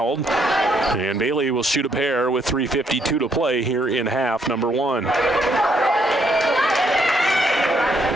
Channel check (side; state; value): both; normal; correlation 0.72